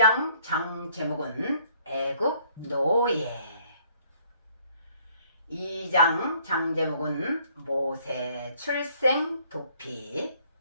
장 제목은 애굽 노예, 2장 장 제목은 모세 출생 도피,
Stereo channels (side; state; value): both; inverted; correlation -0.62